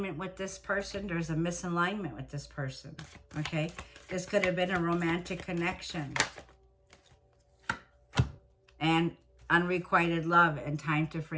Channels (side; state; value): both; identical; correlation 1.00